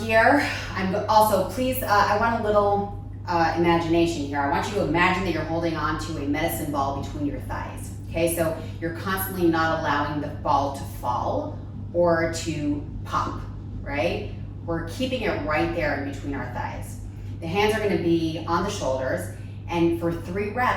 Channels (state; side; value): identical; both; correlation 1.00